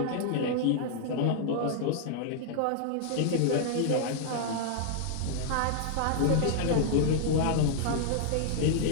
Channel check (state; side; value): different; both; correlation -0.01